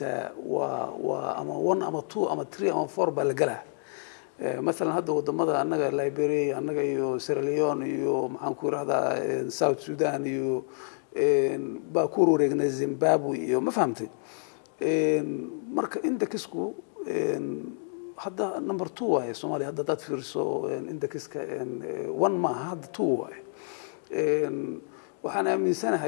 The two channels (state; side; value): silent; right; digital silence